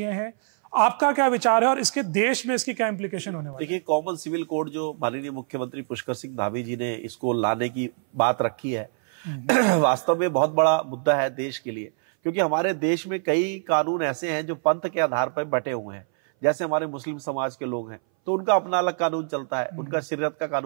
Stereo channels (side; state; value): left; silent; 59 dB below the other